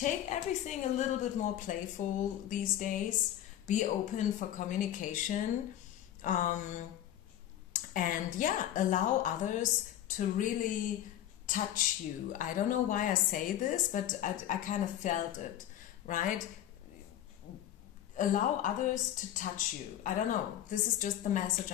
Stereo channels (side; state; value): right; quieter; 11.8 dB